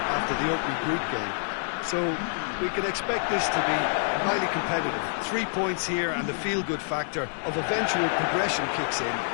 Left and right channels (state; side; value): silent; right; digital silence